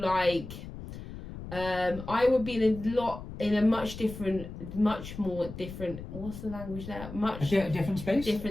I would be in a much more different. What's the language there? Different space.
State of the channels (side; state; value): left; noise; rumble, 11 dB below the sound